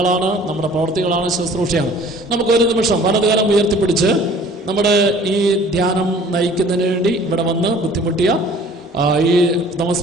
നമ്മുടെ പ്രവൃത്തികളാണ്, ശുശ്രൂഷയാണ്. നമുക്കൊരു നിമിഷം വലതുകരം ഉയർത്തിപ്പിടിച്ച് നമ്മുടെ ഈ ധ്യാനം നയിക്കുന്നതിന് വേണ്ടി ഇവിടെ വന്ന് ബുദ്ധിമുട്ടിയ ഈ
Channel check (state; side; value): normal; both; correlation 0.51